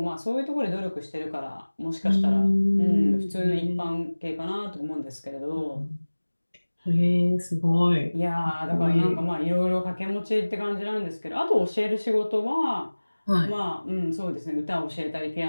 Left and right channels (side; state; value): both; inverted; correlation -1.00